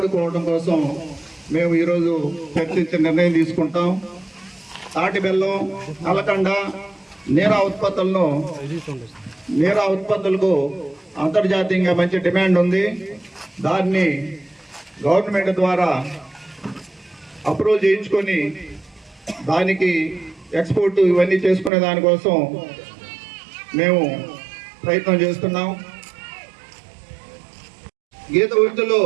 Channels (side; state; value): left; drops out; at 21.7 s